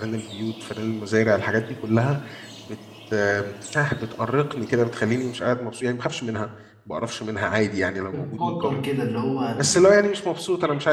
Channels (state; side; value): identical; both; correlation 1.00